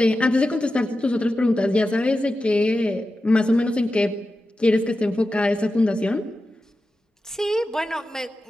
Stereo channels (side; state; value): both; normal; correlation 0.92